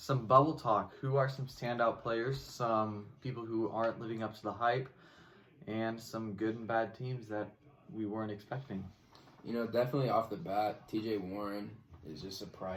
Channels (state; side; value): identical; both; correlation 1.00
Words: bubble talk. Who are some standout players, some people who aren't living up to the hype, and some good and bad teams that we weren't expecting? Definitely off the bat, TJ Warren is just